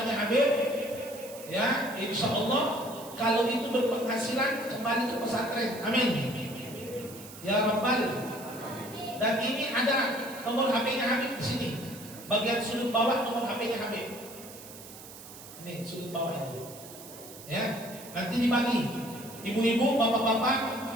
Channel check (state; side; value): noise; right; hiss, 16 dB below the sound